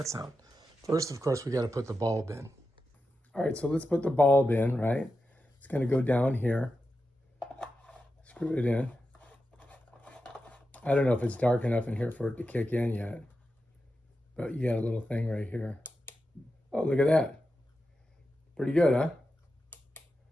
sound? First, of course, we got to put the bulb in. All right, so let's put the bulb in, right? It's going to go down here. Screw it in. I don't know if it's dark enough in here for it to kick in yet, but you got a little thing right here. Oh, look at that. Pretty good, huh?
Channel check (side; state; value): both; normal; correlation 0.90